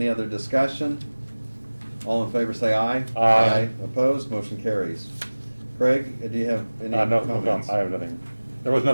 other discussion? All in favor say aye. Aye. Opposed? Motion carries. Craig, do you have any No, comments? I have nothing. There was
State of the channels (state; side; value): inverted; both; correlation -1.00